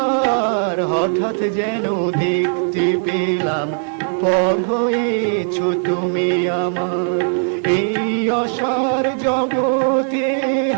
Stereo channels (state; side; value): silent; left; digital silence